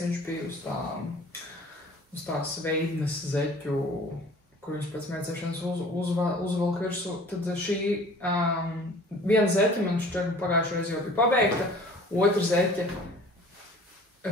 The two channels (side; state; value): both; normal; correlation 0.48